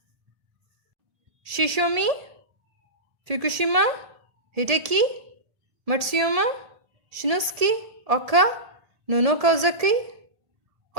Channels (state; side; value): late; left; 1.7 ms